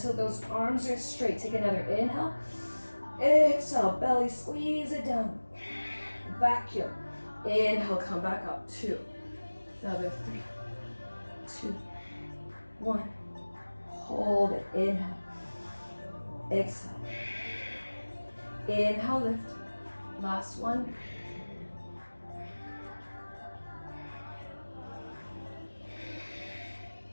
those arms are straight. Take another inhale. Exhale, belly, squeeze it down. Vacuum. Inhale, come back up. 2, another 3, 2, 1. Hold it. Inhale. Exhale. Inhale, lift. Last one.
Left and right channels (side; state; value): both; inverted; correlation -1.00